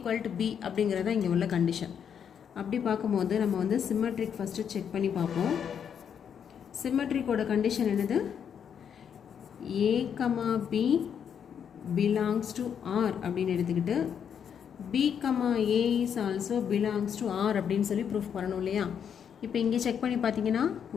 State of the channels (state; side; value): quieter; right; 7.9 dB